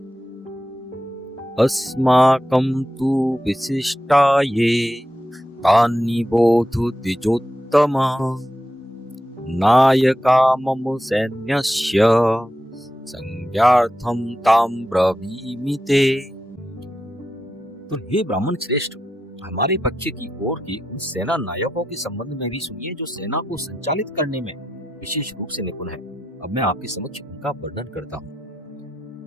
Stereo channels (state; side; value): normal; both; correlation 0.87